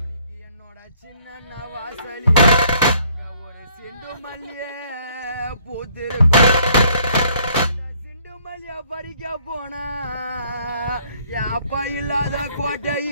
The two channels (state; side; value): inverted; both; correlation -0.63